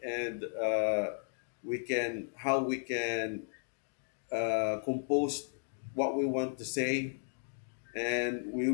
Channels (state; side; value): silent; right; digital silence